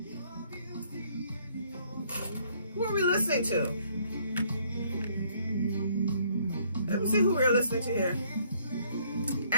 Who are we listening to? Let me see who we're listening to here.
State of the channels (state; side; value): inverted; both; correlation -0.65